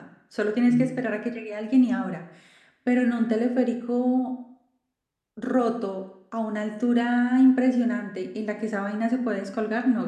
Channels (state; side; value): identical; both; correlation 1.00